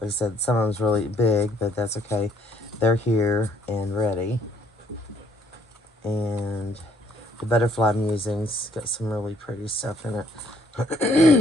I said, some of them's really big, but that's okay. They're here and ready. And the butterfly musings got some really pretty stuff in it.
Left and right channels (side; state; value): both; normal; correlation 0.65